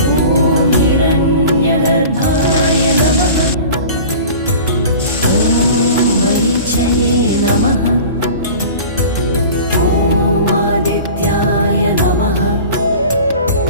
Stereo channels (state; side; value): inverted; both; correlation -0.39